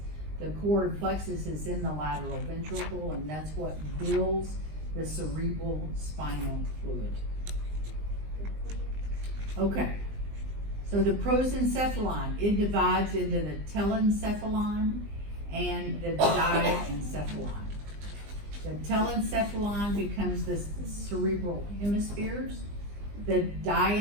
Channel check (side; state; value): left; late; 20 ms